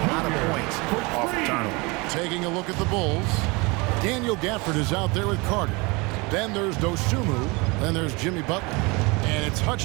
lot of points off the turnover. Taking a look at the Bulls, Daniel Gafford is out there with Carter. Then there's Dosunmu. Then there's Jimmy Butler. And it's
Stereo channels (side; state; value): left; quieter; 26.5 dB